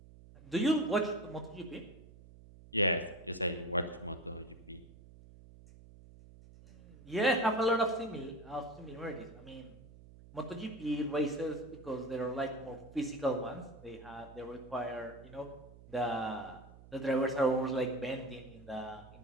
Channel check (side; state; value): right; noise; hum, 20 dB below the sound